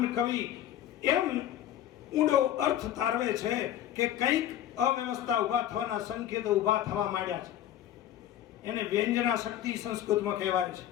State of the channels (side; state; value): right; quieter; 11.7 dB